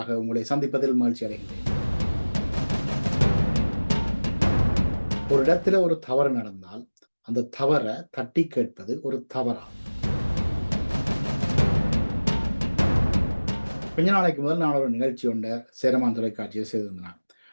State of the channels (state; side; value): inverted; both; correlation -1.00